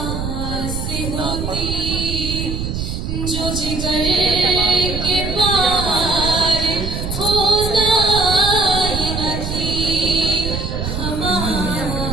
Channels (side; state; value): right; noise; rumble, 4 dB below the sound